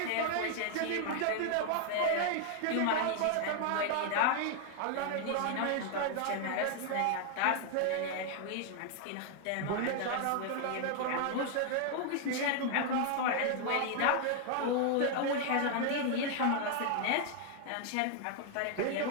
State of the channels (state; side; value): different; both; correlation 0.00